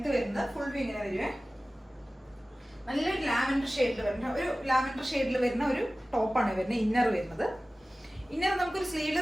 വരുന്നത്. ഫുൾ വ്യൂ ഇങ്ങനെ വരുവേ. നല്ലൊരു ലാവൻഡർ ഷെയ്ഡിൽ വരുന്ന ഒരു ടോപ്പാണ് വരുന്നത്. ഇന്നർ വരുന്നത്, ഇന്നർ നമുക്കൊരു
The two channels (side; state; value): both; normal; correlation 0.97